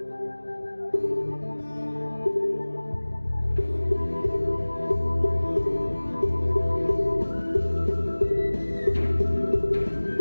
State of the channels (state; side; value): inverted; both; correlation -1.00